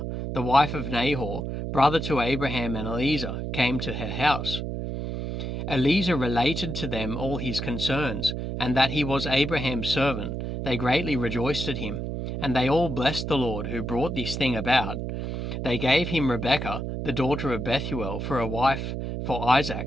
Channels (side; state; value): right; noise; hum, 4 dB below the sound